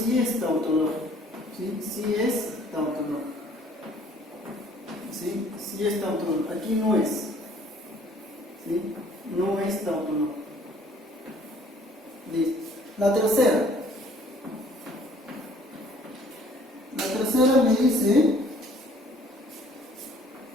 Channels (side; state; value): both; normal; correlation 0.57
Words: es tautológico. ¿Sí? Sí es tautológico. ¿Sí? Sí es tautológico. Aquí no es. ¿Sí? No es tautológico. Listo. La tercera. La tercera me dice